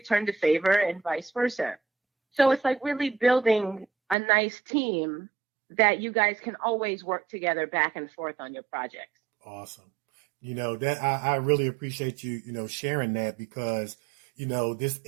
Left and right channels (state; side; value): drops out; left; at 4.2 s